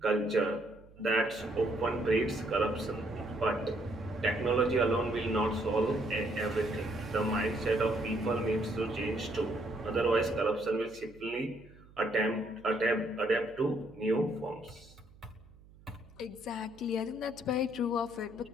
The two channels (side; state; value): right; noise; hum, 24 dB below the sound